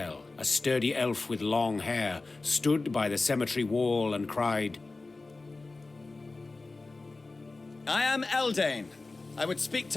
a sturdy elf with long hair, stood by the cemetery wall and cried, I am Eldane. I would speak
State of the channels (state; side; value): quieter; right; 3.5 dB